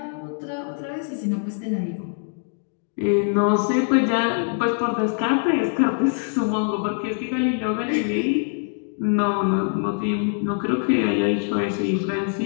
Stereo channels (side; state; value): right; silent; 56 dB below the other